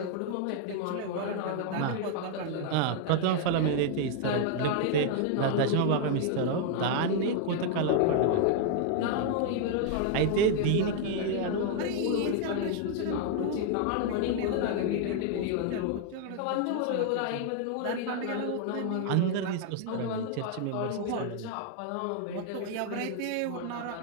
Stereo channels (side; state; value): both; different; correlation 0.00